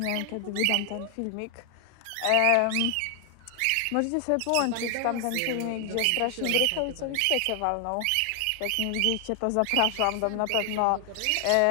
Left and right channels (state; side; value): different; both; correlation 0.00